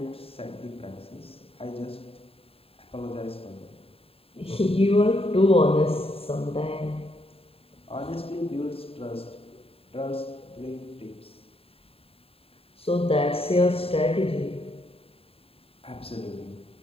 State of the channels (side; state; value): right; late; 0.27 ms